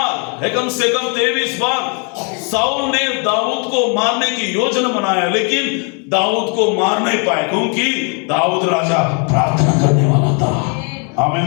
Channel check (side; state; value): right; quieter; 37.1 dB